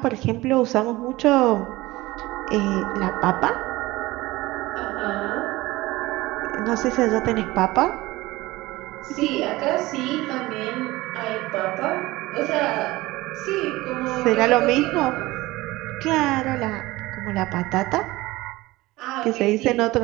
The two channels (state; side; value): quieter; left; 19.4 dB